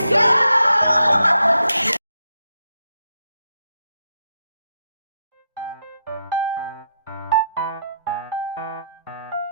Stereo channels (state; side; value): inverted; both; correlation -0.82